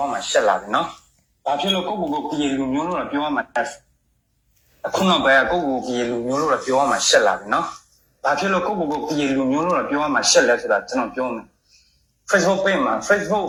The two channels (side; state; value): both; identical; correlation 1.00